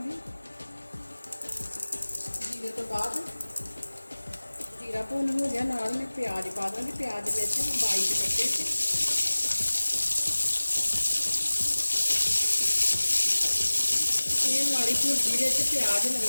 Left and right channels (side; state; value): both; inverted; correlation -1.00